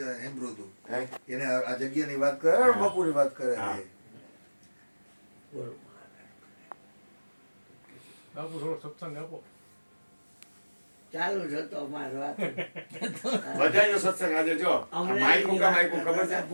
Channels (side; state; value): both; inverted; correlation -1.00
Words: હેમ્બ્રો હતું એને આ જગ્યાની વાત કરે બાપુની વાત કરે બાપુ થોડો સત્સંગ આપો. ચાલુ જ હતો અમારો વાત. બધાયનો સત્સંગ આજે જો માઈકુ ખબર છે